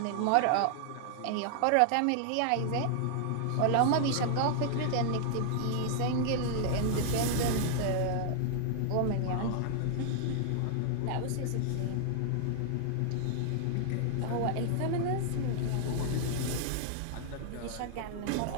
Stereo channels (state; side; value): different; both; correlation 0.00